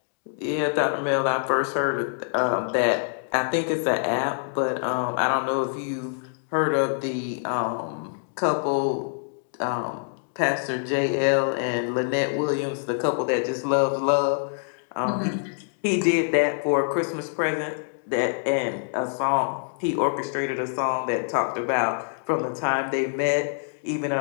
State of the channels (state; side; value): silent; right; digital silence